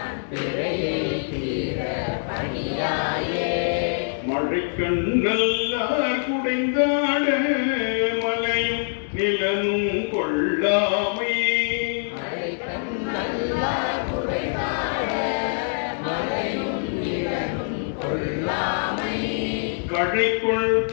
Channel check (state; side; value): silent; right; 62 dB below the other